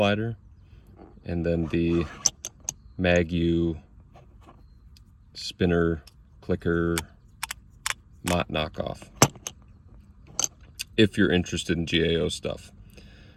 and then the MagU spinner clicker Mott knockoff, if you're interested in GAO stuff.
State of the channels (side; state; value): both; identical; correlation 1.00